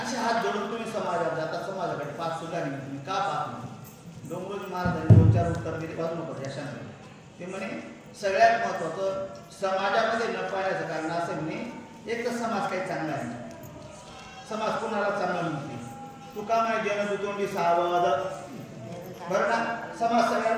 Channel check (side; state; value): both; identical; correlation 1.00